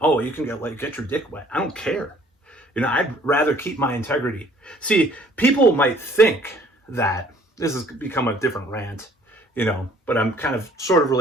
you can get your dick wet. I don't care. I'd rather keep my integrity. See, people might think that this has become a different rant, but I'm kind of sort of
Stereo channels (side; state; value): both; normal; correlation 0.58